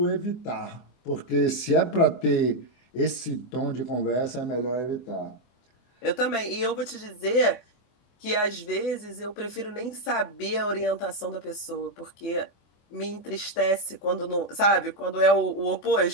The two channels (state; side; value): late; right; 24 ms